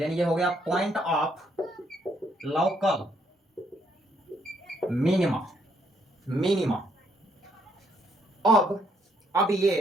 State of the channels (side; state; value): both; normal; correlation 0.72